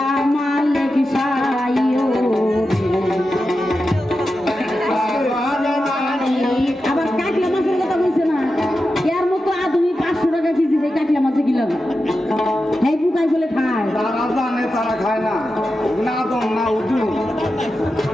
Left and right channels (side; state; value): both; normal; correlation 0.91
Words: মালিক সাই আবার কাকলা মাছের কথা বলছে না এর মতো আধুনিক 500 টাকা কেজি দিয়ে কাকলা মাছে কিলাম এই পুকাই বলে খায় তারা জানে তারা খায় না না দম না উঠুন